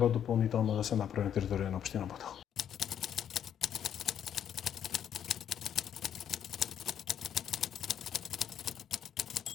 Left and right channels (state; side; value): quieter; right; 9.3 dB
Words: дополнително да се направи на територија на општина Бутел.